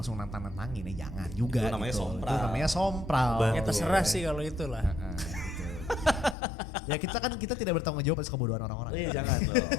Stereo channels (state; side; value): drops out; right; at 6.4 s